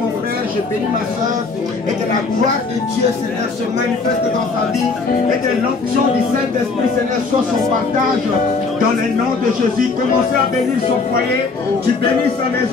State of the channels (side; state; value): right; quieter; 4.2 dB